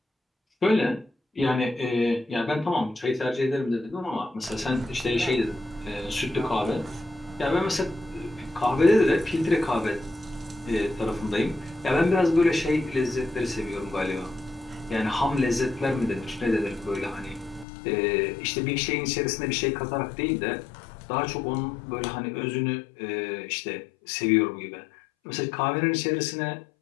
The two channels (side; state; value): right; drops out; at 17.7 s